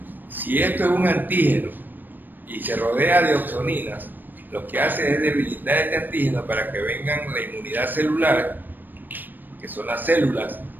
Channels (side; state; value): left; late; 0.091 ms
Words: Si esto es un antígeno y se rodea de opsoninas, lo que hace es debilitar este antígeno para que vengan la inmunidad celular, que son las células